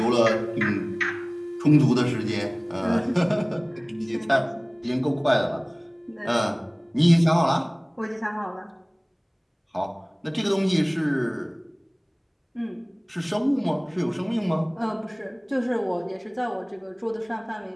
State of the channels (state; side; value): identical; both; correlation 1.00